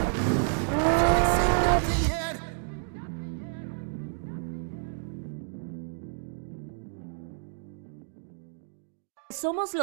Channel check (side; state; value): left; silent; 58 dB below the other